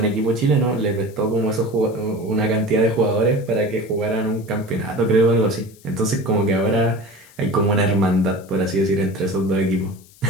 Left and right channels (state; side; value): noise; left; hiss, 26 dB below the sound